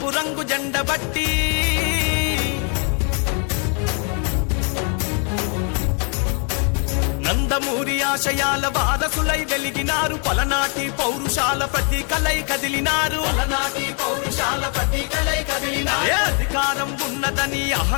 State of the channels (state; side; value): quieter; right; 38.4 dB